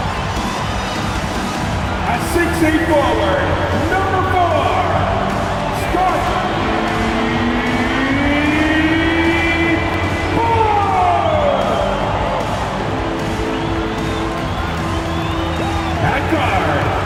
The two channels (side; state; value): both; identical; correlation 1.00